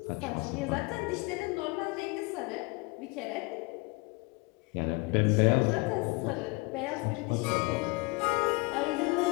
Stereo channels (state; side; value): quieter; right; 26.2 dB